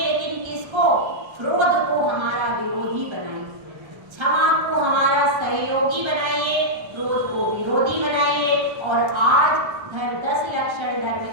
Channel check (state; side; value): late; left; 1.3 ms